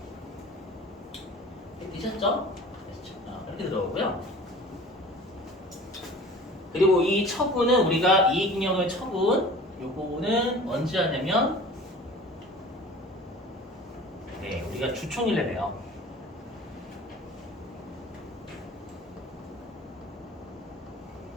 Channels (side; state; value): both; normal; correlation 0.42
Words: 되셨죠? 이렇게 들어오고요. 그리고 이 처분은 우리가 이익잉여금의 처분 요거는 언제 하냐면 우리가 주총일에 해요.